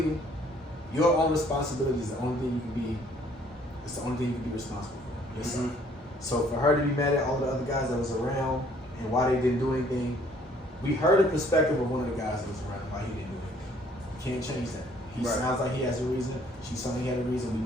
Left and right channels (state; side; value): normal; both; correlation 0.60